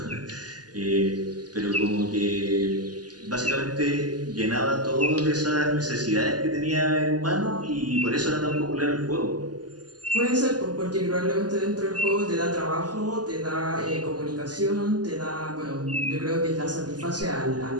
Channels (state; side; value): late; left; 0.69 ms